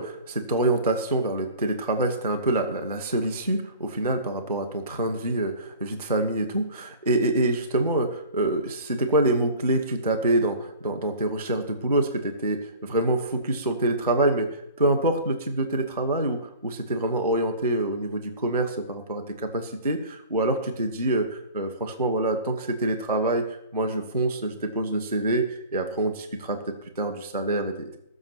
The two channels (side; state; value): both; inverted; correlation -0.42